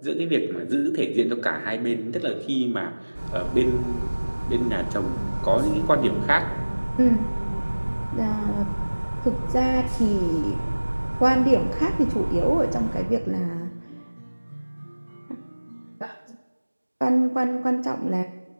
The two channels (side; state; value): both; inverted; correlation -1.00